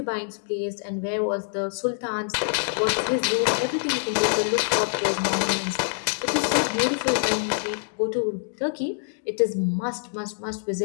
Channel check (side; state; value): right; silent; digital silence